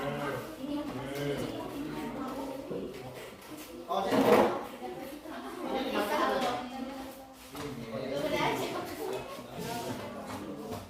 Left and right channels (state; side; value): identical; both; correlation 1.00